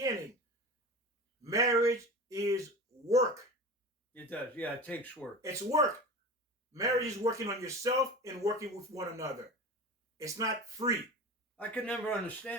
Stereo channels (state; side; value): normal; both; correlation 0.32